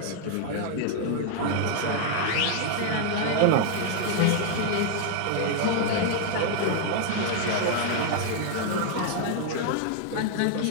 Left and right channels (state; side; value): different; both; correlation 0.00